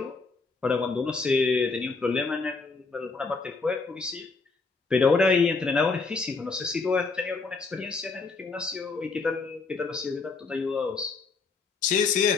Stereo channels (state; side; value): quieter; right; 4.3 dB